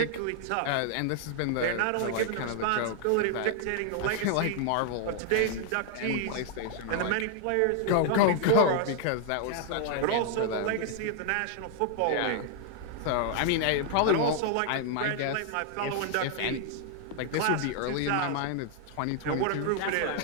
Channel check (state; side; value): different; both; correlation 0.00